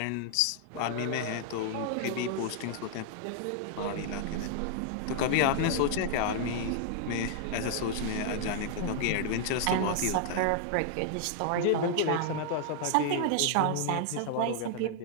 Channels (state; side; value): different; both; correlation -0.01